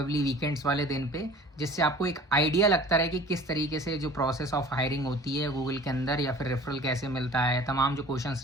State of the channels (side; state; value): both; normal; correlation 0.46